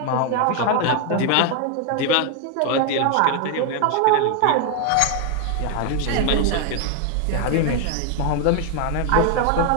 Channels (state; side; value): different; both; correlation 0.01